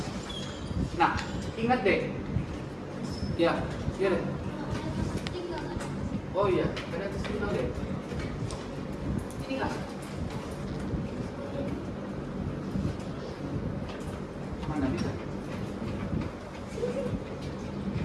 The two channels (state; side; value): identical; both; correlation 1.00